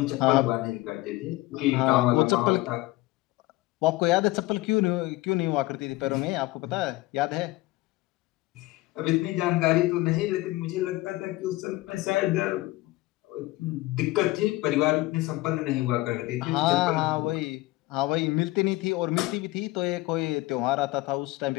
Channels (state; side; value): quieter; right; 19.3 dB